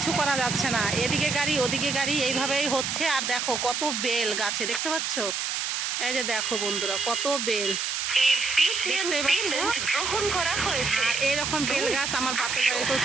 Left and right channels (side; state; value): right; noise; hiss, 1 dB below the sound